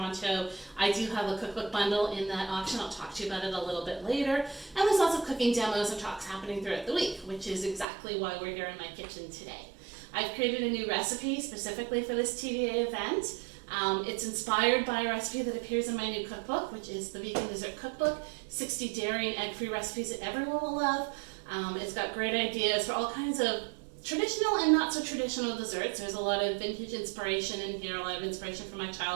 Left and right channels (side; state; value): left; drops out; at 7.9 s